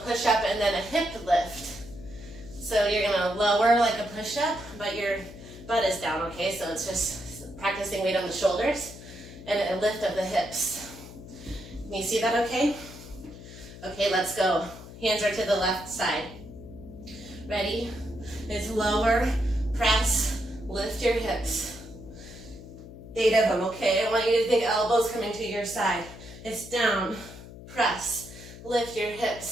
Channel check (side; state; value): left; noise; hum, 15 dB below the sound